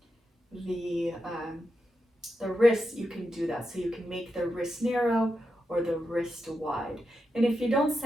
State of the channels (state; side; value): normal; both; correlation 0.87